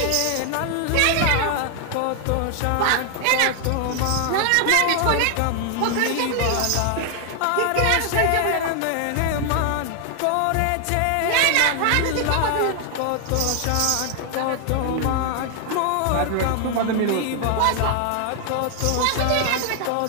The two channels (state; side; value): different; both; correlation 0.00